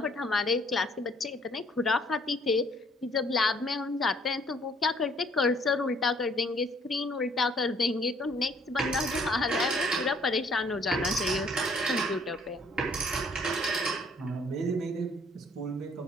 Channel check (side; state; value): both; normal; correlation 0.62